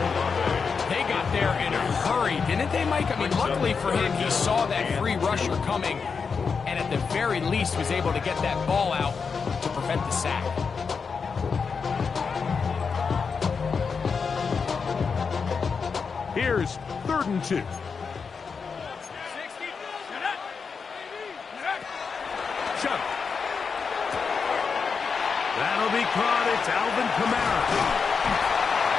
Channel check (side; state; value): right; quieter; 5.5 dB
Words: They got there in a hurry, didn't they, Mike? I mean, luckily for him, he saw that free rusher coming, and at the very least was able to get that ball out to prevent the sack. Here's 3rd and 2. Chuck. That'll be caught. It's Alvin Kamara.